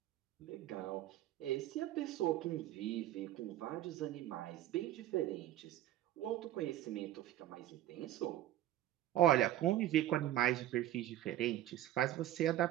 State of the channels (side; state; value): left; quieter; 13.3 dB